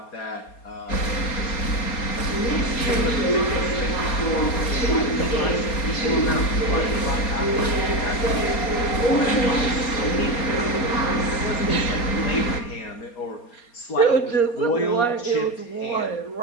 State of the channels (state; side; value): late; right; 4.3 ms